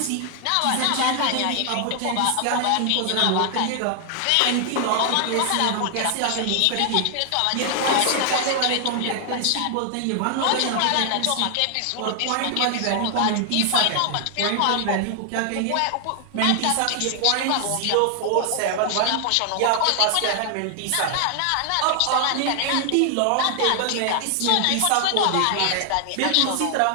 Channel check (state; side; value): different; both; correlation 0.00